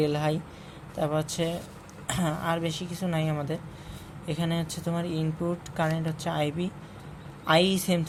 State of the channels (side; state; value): both; identical; correlation 1.00